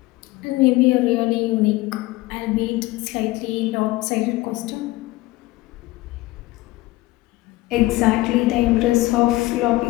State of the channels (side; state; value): right; quieter; 19.0 dB